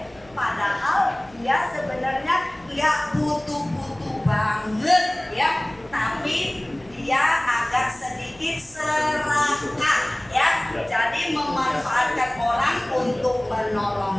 Padahal dia sebenarnya nggak butuh-butuh banget, ya. Tapi dia agak sedikit serakah, ya. Jadi memanfaatkan orang untuk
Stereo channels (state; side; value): noise; left; hum, 27 dB below the sound